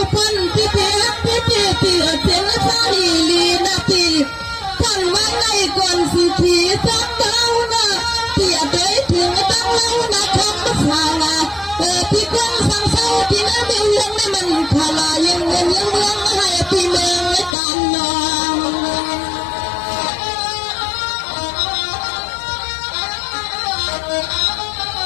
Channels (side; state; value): right; drops out; at 17.6 s